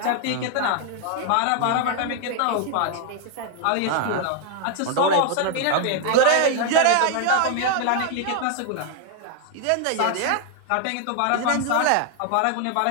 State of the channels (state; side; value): different; both; correlation 0.00